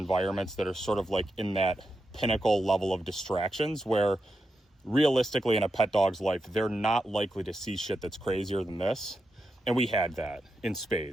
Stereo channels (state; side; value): normal; both; correlation 0.87